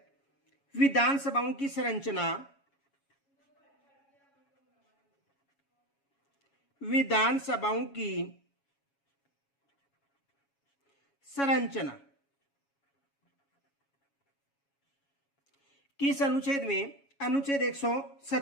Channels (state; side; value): late; right; 7.2 ms